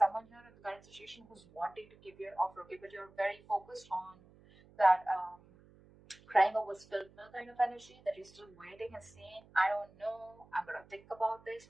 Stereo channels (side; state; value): right; noise; hum, 25 dB below the sound